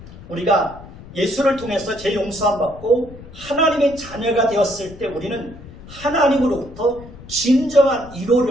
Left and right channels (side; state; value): left; noise; rumble, 17 dB below the sound